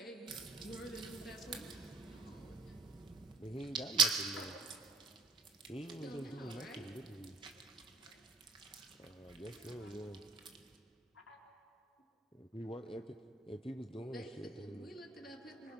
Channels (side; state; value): left; quieter; 3.7 dB